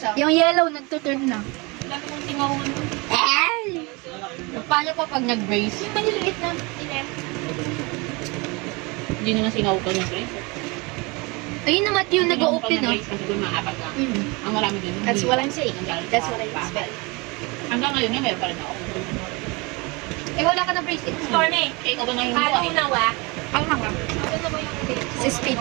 Yung yellow, nagtuturn na. Laki mong tingawan. Ay! Paano pa pag nag-brace? Yung maliliit na. Inem. Hindi naman singaw ka ng Grace. Ayun naman yung nag-open, no? Kasi doon maapat lang. Mm. Ang marami doon. That's what I'm saying. Ang galing That's sa what I'm papat. saying. Hanggang ngayon nga, meron pa rin ako. Eh, wala ka na bracelet. Stormy. Eh, ikaw ba na yung Halo buhay? na wa. Ang hanga. Ano na ba yung date? Si speed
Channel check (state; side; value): quieter; left; 27.1 dB